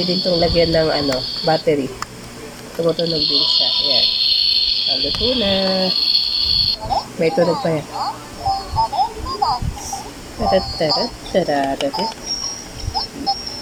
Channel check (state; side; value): identical; both; correlation 1.00